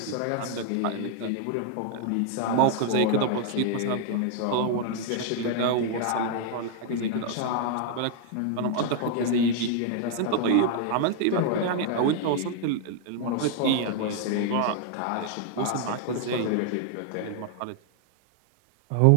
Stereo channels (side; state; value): both; different; correlation 0.00